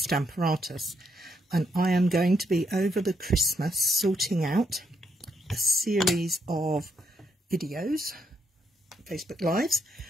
and I am going to be over the Christmas sorting out a series of videos, Facebook Lives,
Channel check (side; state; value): both; normal; correlation 0.76